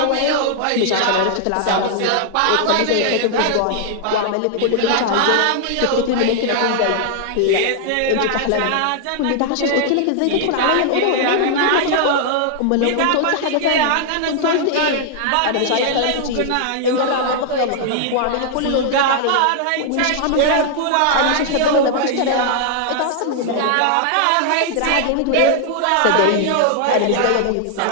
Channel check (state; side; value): different; both; correlation -0.01